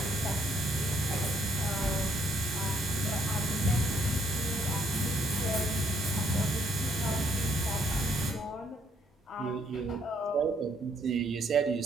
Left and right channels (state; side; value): normal; both; correlation 0.70